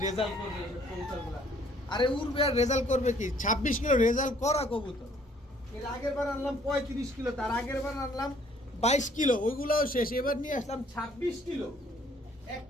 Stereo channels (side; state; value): both; normal; correlation 0.61